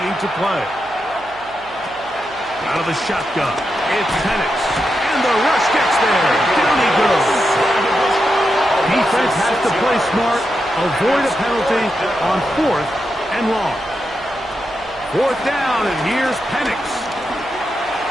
to play. Out of the shotgun, it's Penix. And the rush gets there. Down he goes. Defense has to play smart, avoid a penalty on 4th and long. 4th down, and here's Penix.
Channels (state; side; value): noise; right; hum, 23 dB below the sound